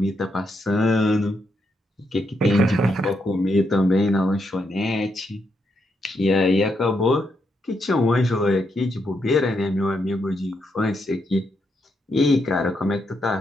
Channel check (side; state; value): both; normal; correlation 0.80